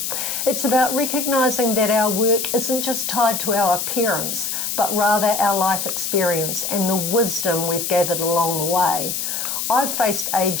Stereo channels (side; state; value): left; noise; hiss, 2 dB below the sound